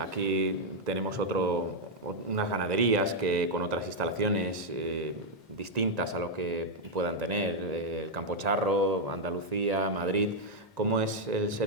tenemos unas ganaderías que con otras instalaciones distintas a lo que puedan tener, el Campo Charro, Andalucía, Madrid. ¿Cómo es el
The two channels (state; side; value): normal; both; correlation -0.02